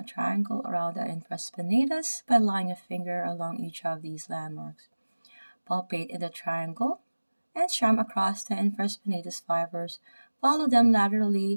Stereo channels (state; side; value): inverted; both; correlation -1.00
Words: triangle around the infraspinatus by laying a finger along each of these landmarks. Palpate in the triangle and strum across the infraspinatus fibers. Follow them